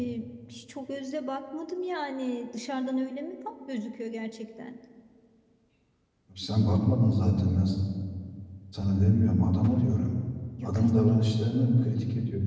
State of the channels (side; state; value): both; identical; correlation 1.00